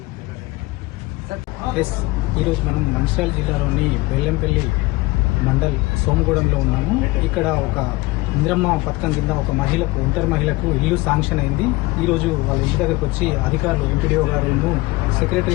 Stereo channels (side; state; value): right; quieter; 21.4 dB